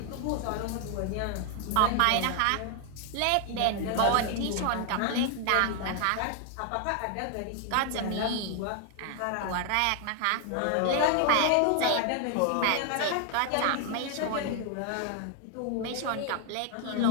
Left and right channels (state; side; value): different; both; correlation 0.00